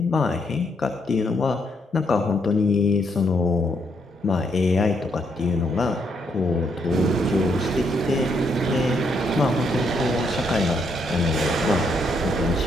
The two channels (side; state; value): both; normal; correlation 0.75